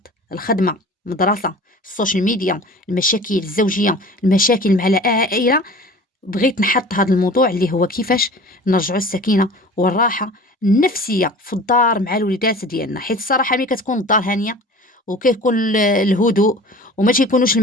الخدمه، المدرسه، السوشيال ميديا، المشاكل الزوجيه، المشاكل مع العائله. بغيت نحط هذا الموضوع اللي هو كيفاش نرجعوا السكينة والراحة النفسية في الدار مع الوليدات ديالنا، حيت الصراحة ملي كتكون الدار هانية وكيكون الهدوء وما تيكونوش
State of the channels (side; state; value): both; normal; correlation 0.41